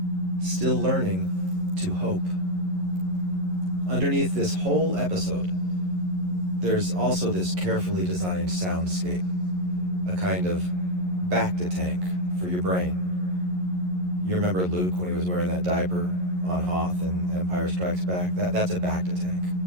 still learning to hope. Underneath this whole episode, there's also this carefully designed soundscape, a kind of bacta tank for your brain. You remember Luke when he was wearing that diaper on Hoth in Empire Strikes Back? That's a bacta tank.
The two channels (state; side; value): late; left; 11 ms